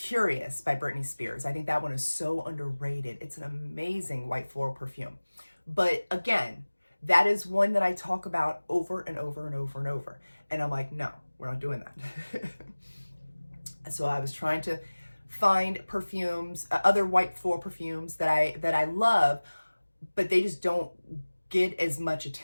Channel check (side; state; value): both; inverted; correlation -1.00